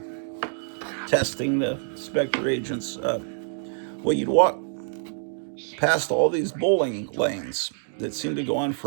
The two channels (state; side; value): silent; left; digital silence